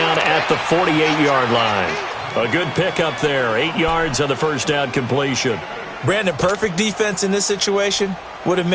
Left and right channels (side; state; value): both; identical; correlation 1.00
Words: at the 48-yard line. A good pickup there. 8 yards on the 1st down completion. Brandon, perfect defense in this situation would have